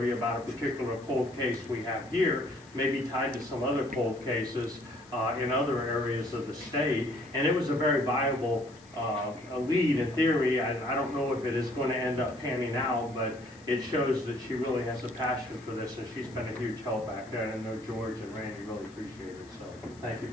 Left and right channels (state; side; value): noise; left; hiss, 26 dB below the sound